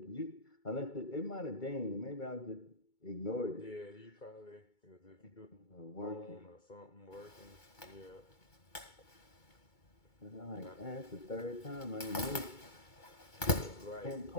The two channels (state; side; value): late; right; 2.2 ms